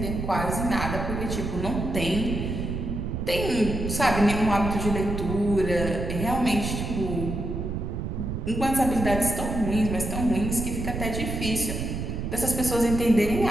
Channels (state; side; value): noise; right; rumble, 3 dB below the sound